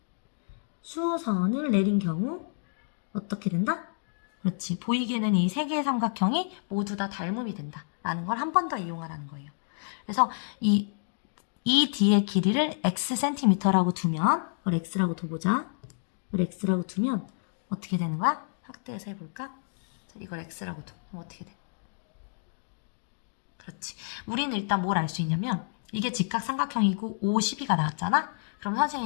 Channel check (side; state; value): right; silent; digital silence